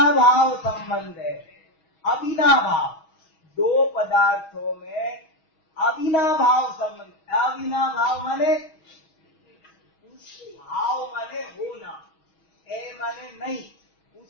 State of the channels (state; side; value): late; right; 6.2 ms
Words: संबंध है, अविनाभाव, दो पदार्थों में अविनाभाव संबंध। अविनाभाव माने उस भाव माने होना, ए माने नहीं,